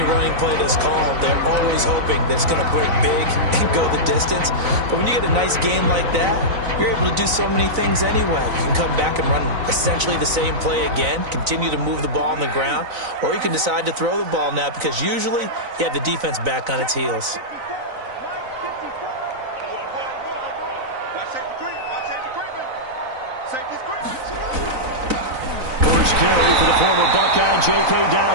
running play that's called, they're always hoping that it's going to break big and go the distance. But when you get a nice game like that, you're able to do so many things anyway. You can come back and run essentially the same play again, continue to move the ball on the ground, or you can decide to throw the ball now because usually you have the defense back on its heels. First carry for the former Buckeye, J.K.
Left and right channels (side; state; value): left; late; 4.0 ms